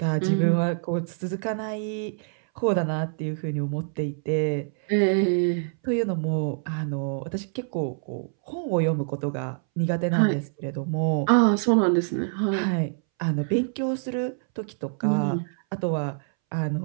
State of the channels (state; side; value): silent; left; 61 dB below the other